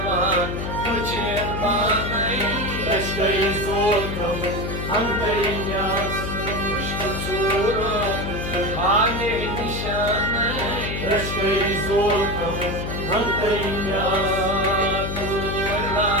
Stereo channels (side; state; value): left; noise; hum, 4 dB below the sound